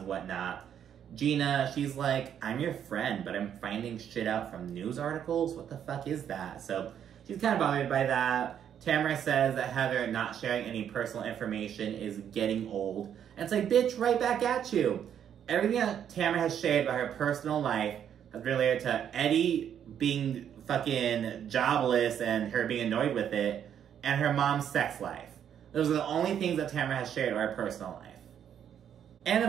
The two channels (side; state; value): left; quieter; 9.1 dB